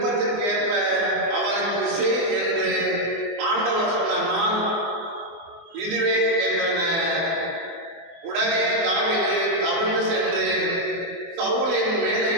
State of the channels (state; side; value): late; left; 24 ms